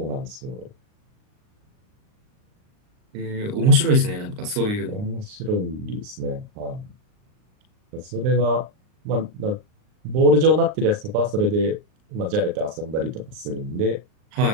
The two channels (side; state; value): left; late; 38 ms